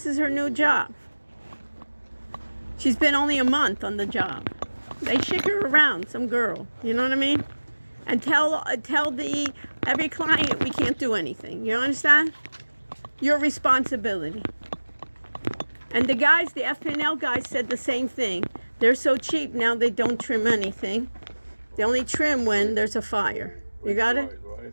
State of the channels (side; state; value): both; inverted; correlation -1.00